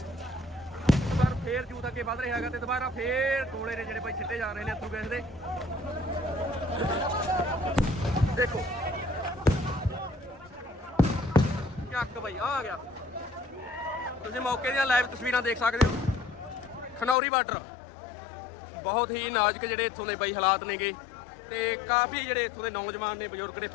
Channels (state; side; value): drops out; right; at 17.2 s